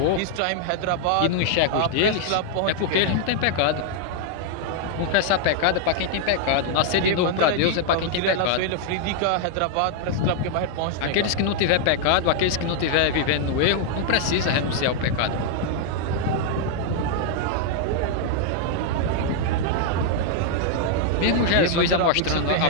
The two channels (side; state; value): both; different; correlation 0.00